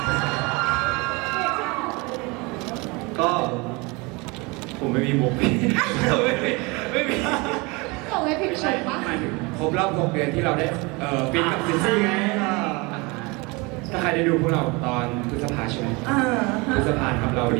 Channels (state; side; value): quieter; left; 26.6 dB